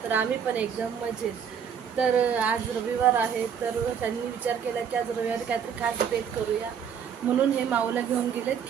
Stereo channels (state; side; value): quieter; left; 7.6 dB